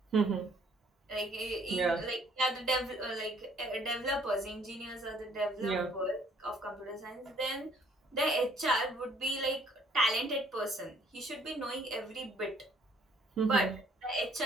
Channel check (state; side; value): normal; both; correlation 0.61